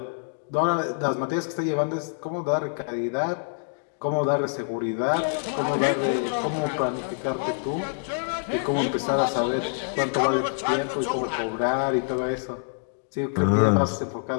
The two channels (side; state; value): right; silent; digital silence